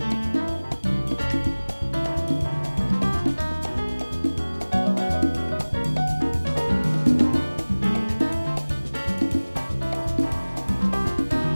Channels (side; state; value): both; inverted; correlation -1.00